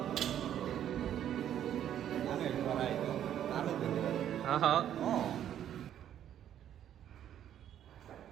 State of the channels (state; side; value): quieter; left; 10.5 dB